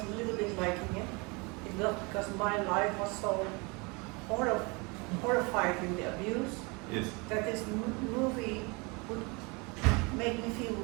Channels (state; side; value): quieter; left; 28.6 dB